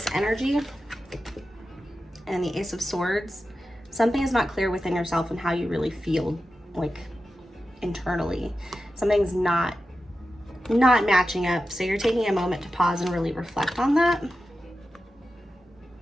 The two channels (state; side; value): normal; both; correlation 0.92